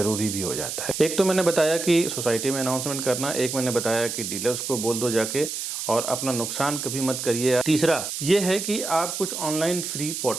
भी हो जाता है। एक तो मैंने बताया कि सोसाइटी में अनाउंसमेंट करना, एक मैंने बताया कि डीलर्स को बोल दो जाके और अपना नुकसान कभी मत करिए। तीसरा ये है कि आप कुछ ऑनलाइन फ्री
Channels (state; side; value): noise; right; hiss, 5 dB below the sound